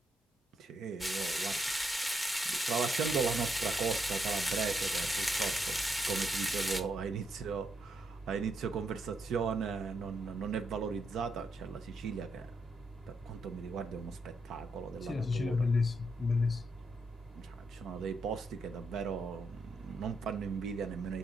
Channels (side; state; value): both; normal; correlation 0.79